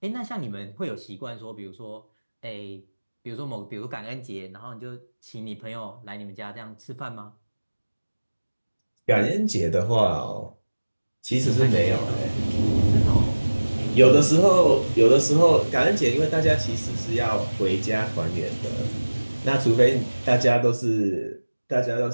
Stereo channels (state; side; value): inverted; both; correlation -1.00